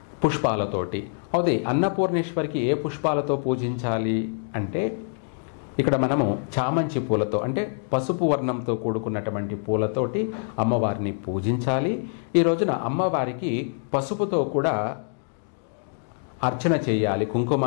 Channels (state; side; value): silent; right; digital silence